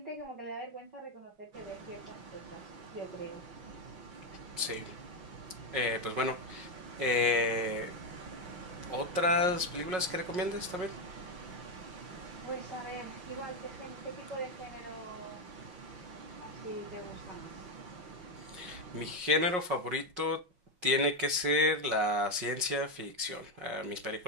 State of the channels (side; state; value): left; late; 5.5 ms